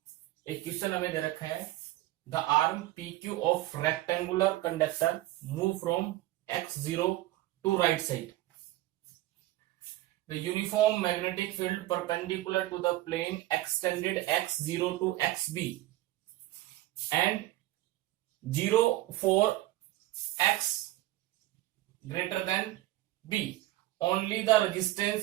एक क्वेश्चन हमें दे रखा है, the arm P Q of rectangular conductor move from x0 to right side, the uniform magnetic field perpendicular to the plane extended x0 to xb and 0 for x greater than b. Only the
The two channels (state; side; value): quieter; left; 16.5 dB